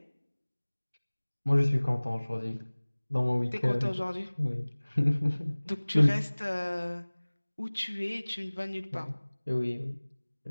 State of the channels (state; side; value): inverted; both; correlation -1.00